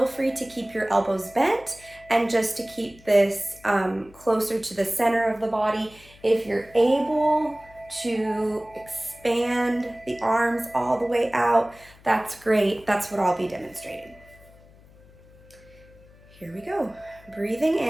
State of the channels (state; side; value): noise; left; hum, 25 dB below the sound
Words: free to keep your elbows bent and just to keep this closer to the center of the body. If you're able to expand the arms all the way out, that's great. That's what I'll be demonstrating. Here we go. Breathing